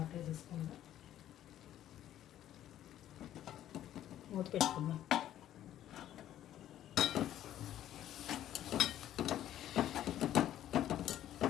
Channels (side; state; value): right; quieter; 12.0 dB